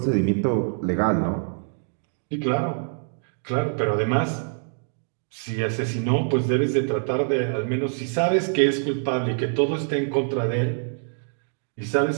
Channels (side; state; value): left; silent; digital silence